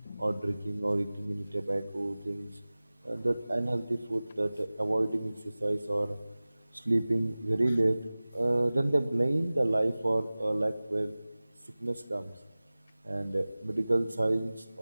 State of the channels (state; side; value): inverted; both; correlation -0.98